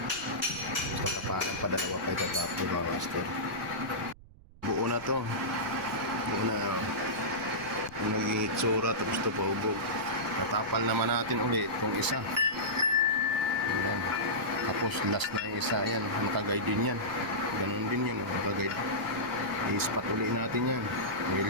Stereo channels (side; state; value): right; noise; rumble, 21 dB below the sound